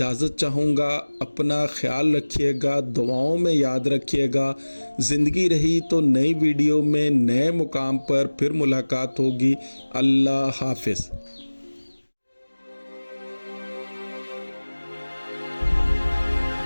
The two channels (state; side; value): inverted; both; correlation -1.00